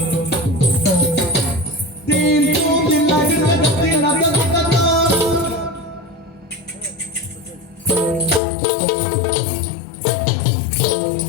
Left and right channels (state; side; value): drops out; right; at 8.4 s